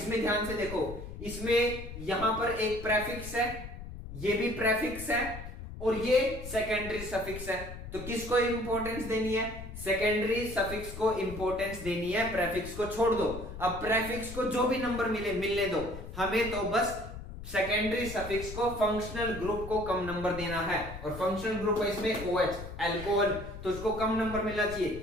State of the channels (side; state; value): left; noise; rumble, 11 dB below the sound